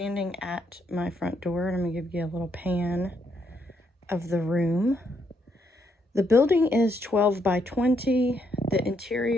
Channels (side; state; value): both; normal; correlation 0.75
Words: at my front door and I'm gonna give you a little pan of the room. The building is 12 by 20. The